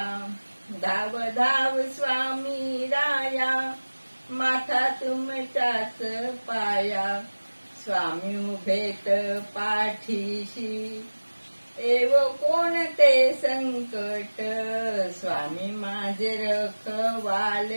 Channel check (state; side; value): inverted; both; correlation -1.00